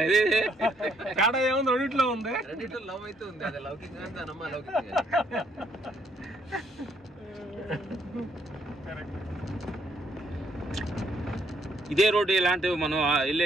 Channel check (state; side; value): normal; both; correlation 0.69